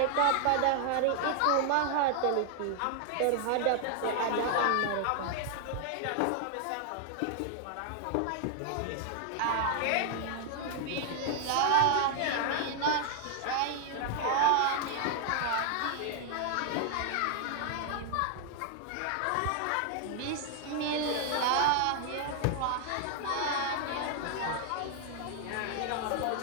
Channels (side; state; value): both; different; correlation 0.00